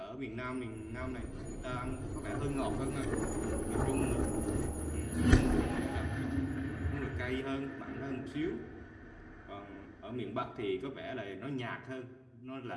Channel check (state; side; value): identical; both; correlation 1.00